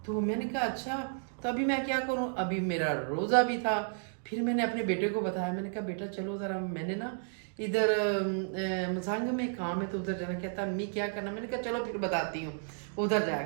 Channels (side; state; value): left; silent; digital silence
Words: तो मैंने कहा अच्छा, तो अभी मैं क्या करूं, अभी मेरा रोज़ा भी था। फिर मैंने अपने बेटे को बताया, मैंने कहा बेटा चलो ज़रा, मैंने ना इधर मसांग में काम है तो उधर जाना। कहता अम्मी क्या करना, मैंने कहा चलो फिर बताती हूँ। उधर